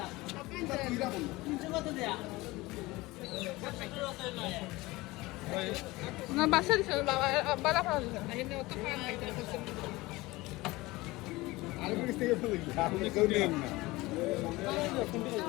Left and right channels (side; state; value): right; quieter; 20.6 dB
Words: না বাসা দিছে বাবা বালা ফালা দিছে।